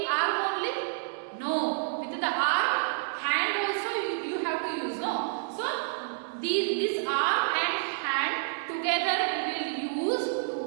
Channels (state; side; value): silent; left; digital silence